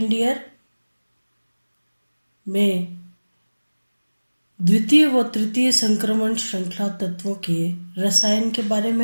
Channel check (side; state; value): both; inverted; correlation -1.00